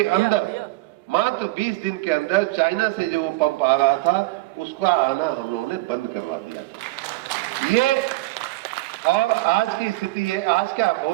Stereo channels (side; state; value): left; quieter; 20.9 dB